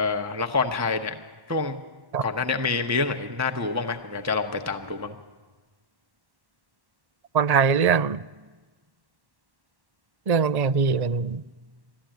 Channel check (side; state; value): left; late; 1.1 ms